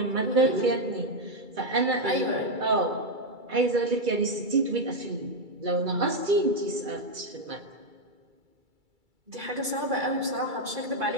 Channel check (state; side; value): late; left; 2.3 ms